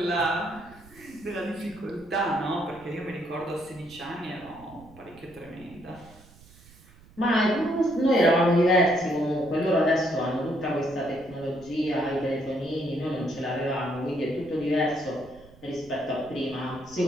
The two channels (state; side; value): noise; right; rumble, 23 dB below the sound